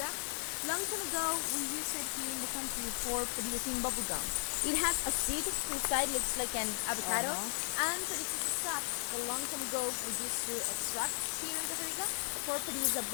Long time ago, we used it here in the country for producing bubblegum. It has a seed inside, looks like an avocado, and produces a sap that long time ago we used to extract here in Costa Rica for produce a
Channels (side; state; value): right; silent; 54 dB below the other